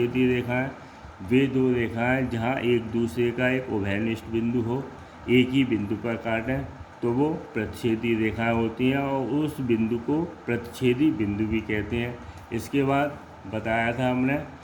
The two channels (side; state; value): both; identical; correlation 1.00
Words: रेखाएं वे दो रेखाएं जहां एक दूसरे का एक उभयनिष्ठ बिंदु हो, एक ही बिंदु पर काटें तो वो प्रतिच्छेदी रेखाएं होती हैं और उस बिंदु को प्रतिच्छेदी बिंदु भी कहते हैं। इसके बाद बताया था हमने